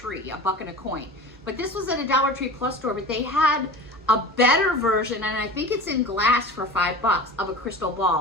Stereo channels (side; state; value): both; normal; correlation 0.35